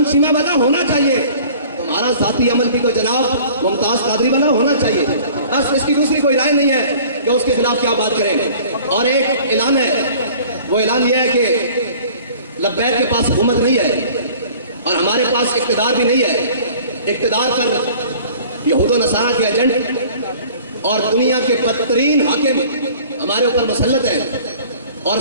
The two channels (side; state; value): both; inverted; correlation -0.48